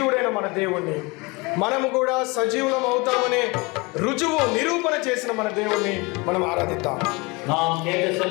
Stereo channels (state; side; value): quieter; right; 26.5 dB